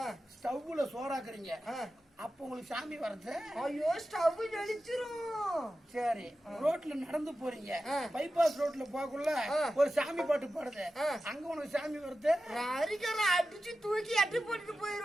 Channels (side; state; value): both; normal; correlation 0.93